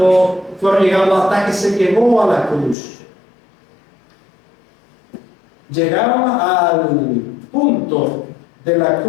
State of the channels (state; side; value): drops out; right; at 2.8 s